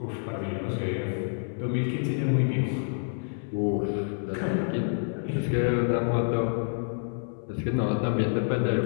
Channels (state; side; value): silent; right; 59 dB below the other